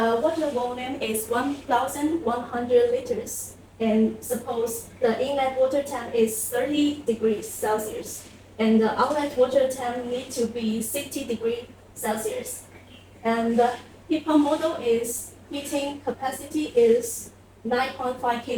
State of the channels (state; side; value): identical; both; correlation 1.00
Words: water volume is 1,100 liters, and suppose the inlet water tank is 30 degrees Celsius, and the outlet water tank need to be 60 degrees Celsius, and the heat pump model is heating capacity is 9.5